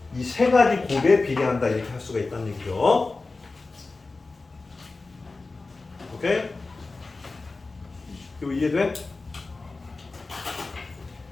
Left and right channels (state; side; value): quieter; right; 3.6 dB